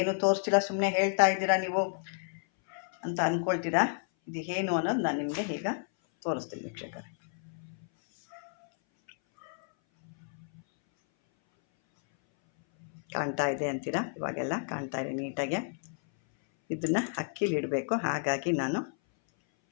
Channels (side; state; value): right; silent; 57 dB below the other